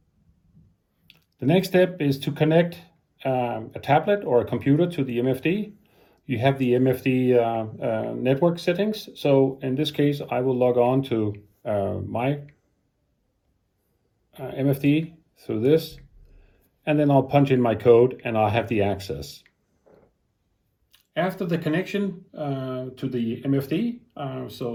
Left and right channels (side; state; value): both; identical; correlation 1.00